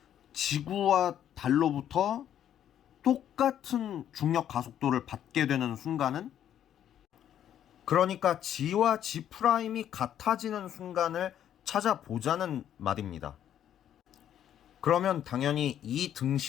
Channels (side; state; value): right; quieter; 10.4 dB